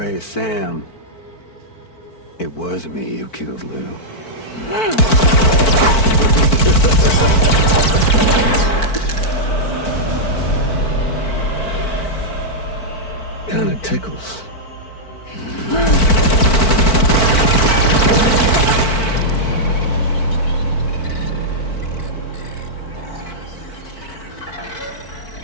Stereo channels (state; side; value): late; right; 4.5 ms